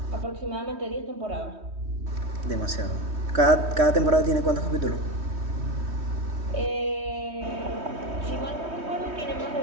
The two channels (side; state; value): left; late; 3.2 ms